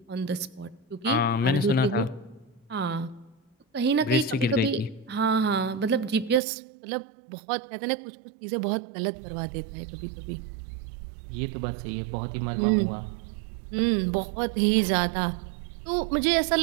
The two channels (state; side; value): drops out; left; at 6.4 s